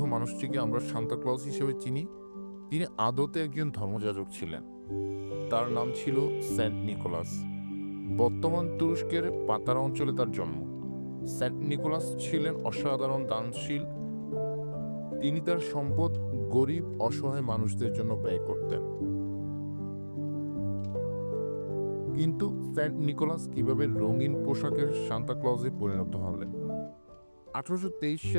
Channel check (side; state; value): both; inverted; correlation -1.00